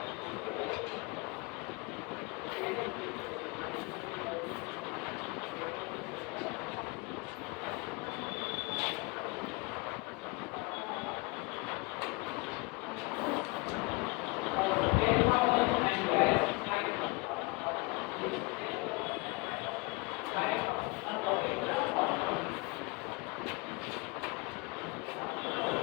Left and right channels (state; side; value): quieter; right; 28.0 dB